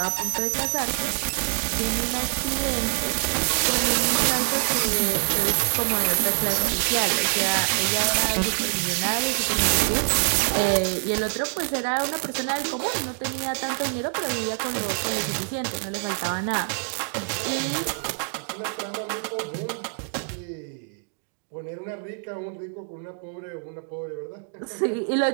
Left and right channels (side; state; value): left; silent; digital silence